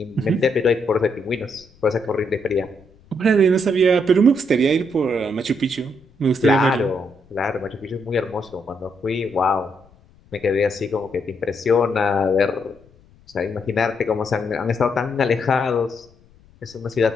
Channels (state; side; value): noise; left; rumble, 28 dB below the sound